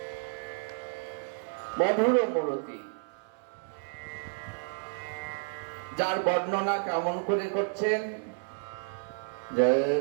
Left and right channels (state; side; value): silent; left; digital silence